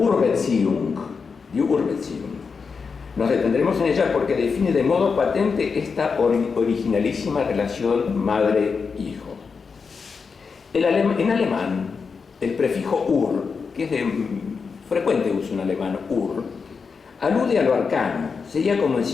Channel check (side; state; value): right; quieter; 5.3 dB